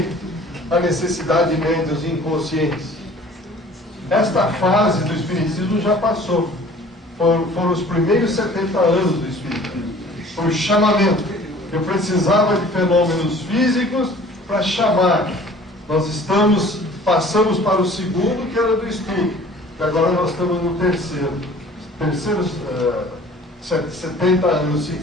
a necessidade de médios inconscientes? Esta fase do Espiritismo já passou. Foram os primeiros 70 anos do Espiritismo. Foi o chamamento. Eu precisava de fenômenos físicos para chamar. Nós passamos para o segundo, que era do estudo. E agora nós estamos no terceiro. Terceiros 70 anos, se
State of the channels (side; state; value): both; normal; correlation 0.49